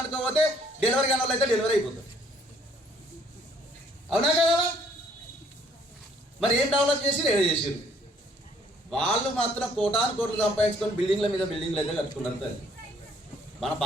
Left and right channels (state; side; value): normal; both; correlation 0.63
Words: పోతే డెలివరీ కాని వాళ్ళు అయితే డెలివరీ అయిపోతుంది, అవునా కదా? మరి ఏం డెవలప్ చేసి ఏదో చేసారు. వాళ్ళు మాత్రం కోటాను కోట్లు సంపాదించుకొని బిల్డింగ్ల మీద బిల్డింగ్లు అయితే కట్టుకున్నారు తల్లి. మన